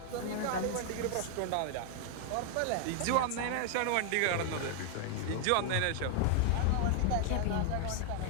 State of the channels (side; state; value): both; different; correlation 0.00